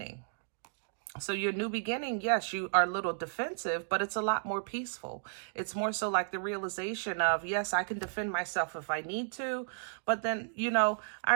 So your new beginning, yes, you are a little defensive, but it's a lot more peaceful. It's more so like the realization of, yes, I can defend myself if I need to. But then, you know, I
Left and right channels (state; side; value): silent; left; digital silence